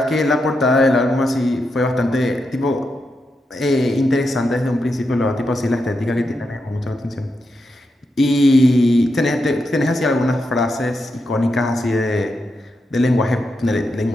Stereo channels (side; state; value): both; normal; correlation 0.85